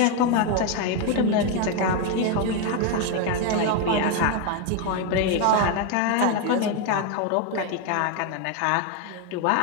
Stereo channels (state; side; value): different; both; correlation 0.01